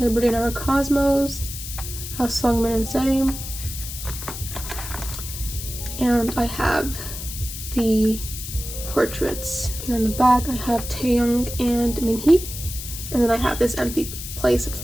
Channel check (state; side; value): noise; left; hiss, 9 dB below the sound